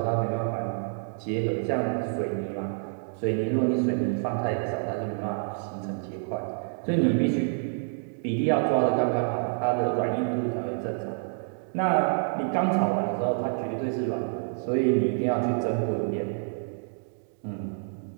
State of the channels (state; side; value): silent; left; digital silence